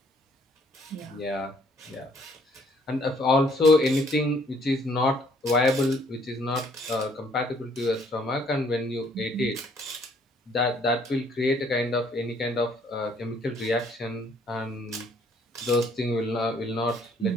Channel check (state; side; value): normal; both; correlation 0.63